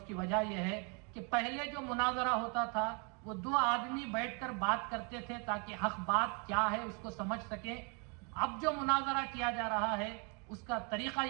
کی وجہ یہ ہے کہ پہلے جو مناظرہ ہوتا تھا وہ دو آدمی بیٹھ کر بات کرتے تھے تاکہ حق بات کیا ہے اس کو سمجھ سکیں۔ اب جو مناظرہ کیا جا رہا ہے اس کا طریقہ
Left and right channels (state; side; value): quieter; left; 35.1 dB